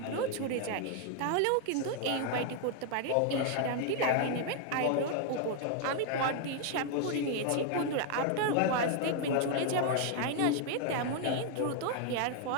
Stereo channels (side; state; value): both; different; correlation 0.00